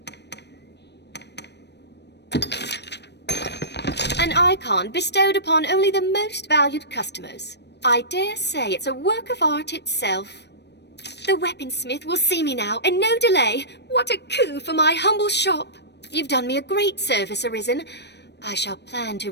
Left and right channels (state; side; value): late; right; 0.50 ms